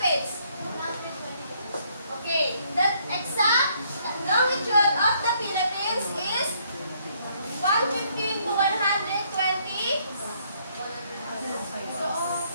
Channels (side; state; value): both; inverted; correlation -0.69